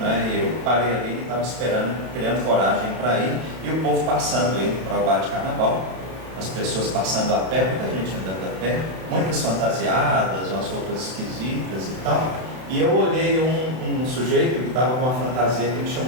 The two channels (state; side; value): late; left; 32 ms